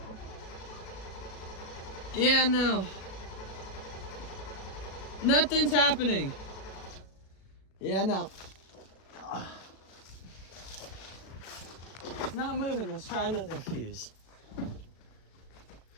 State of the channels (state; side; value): late; right; 37 ms